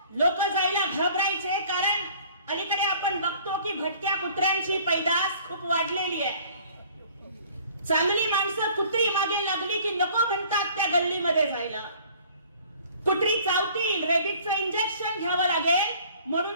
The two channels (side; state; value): both; inverted; correlation -0.52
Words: लोक जायला घाबरायचे कारण अलीकडे आपण बघतो की भटक्या कुत्र्यांची पैदास खूप वाढलेली आहे. चांगली माणसं कुत्री मागे लागली की नको म्हणतात त्या गल्लीमध्ये जायला. कुत्री चावतील, रेबीजचं इंजेक्शन घ्यावं लागेल म्हणून